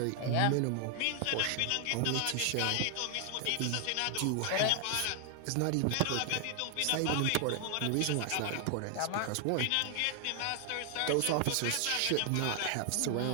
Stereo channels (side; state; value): both; different; correlation 0.00